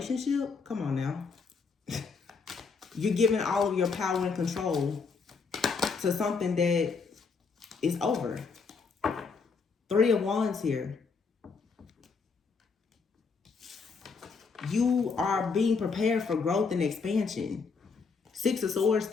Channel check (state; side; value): quieter; right; 5.0 dB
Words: Come on now. You're giving all of your power and control to something that is over. Three of Wands here. You are being prepared for growth and expansion. Six of Swords,